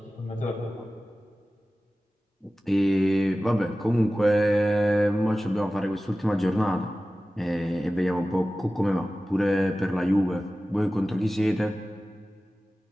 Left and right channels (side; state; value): both; normal; correlation 0.96